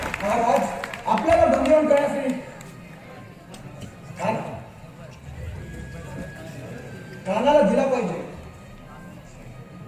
महाराज, आपल्याला बंदीवान करण्यासाठी खानाला दिला पाहिजे.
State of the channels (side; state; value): both; identical; correlation 1.00